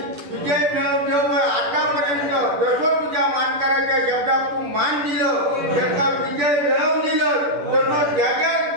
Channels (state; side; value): late; left; 10 ms